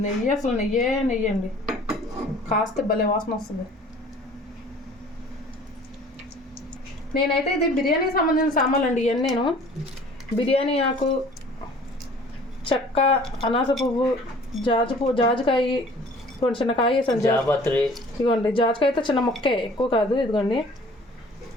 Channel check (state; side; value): normal; both; correlation 0.50